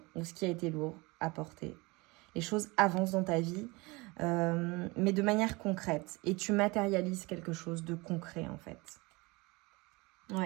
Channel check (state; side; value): quieter; left; 24.6 dB